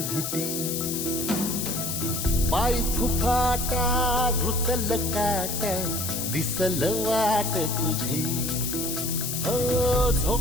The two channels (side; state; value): left; noise; hiss, 3 dB below the sound